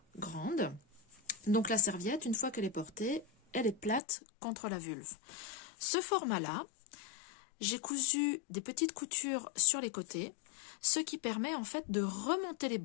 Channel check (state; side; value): drops out; right; at 4.0 s